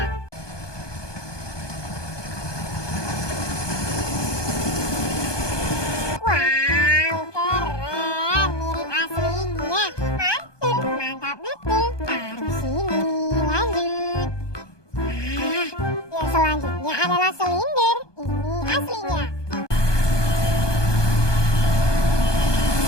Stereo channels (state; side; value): late; right; 1.2 ms